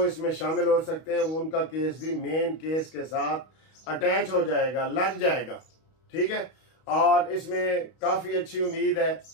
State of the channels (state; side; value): late; right; 31 ms